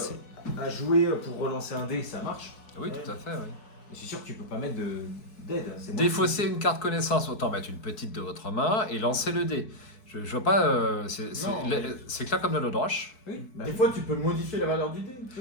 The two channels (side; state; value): right; late; 4.6 ms